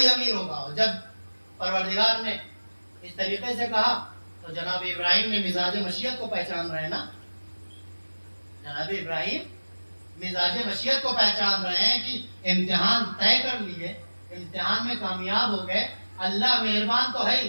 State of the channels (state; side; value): inverted; both; correlation -1.00